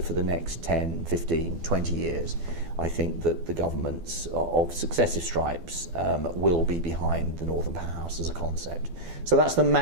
the next 10, 15, 20 years, I think that the governments of successive stripes will be behind the Northern Powerhouse as a concept. So that's the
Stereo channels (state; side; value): late; left; 12 ms